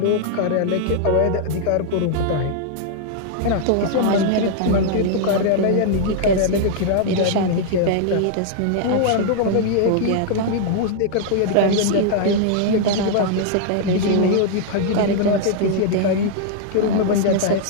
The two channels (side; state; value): both; different; correlation 0.00